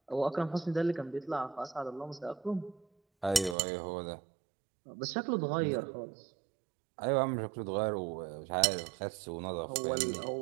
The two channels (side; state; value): left; drops out; at 3.6 s